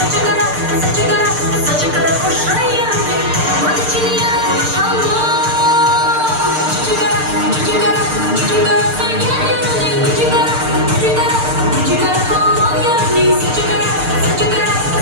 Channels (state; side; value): late; left; 6.6 ms